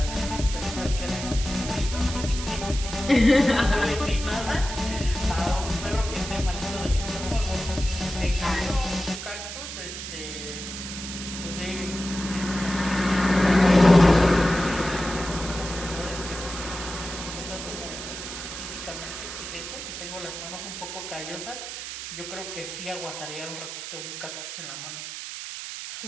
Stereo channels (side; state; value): right; noise; hiss, 8 dB below the sound